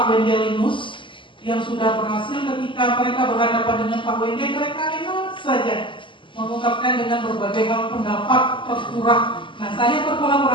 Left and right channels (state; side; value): late; right; 0.24 ms